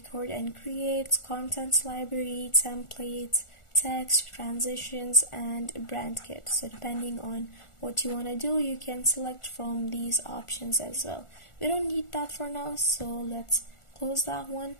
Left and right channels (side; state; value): right; late; 1.4 ms